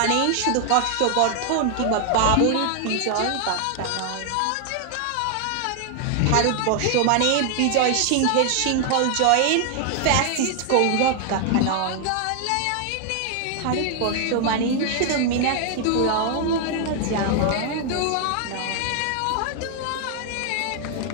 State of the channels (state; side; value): different; both; correlation 0.00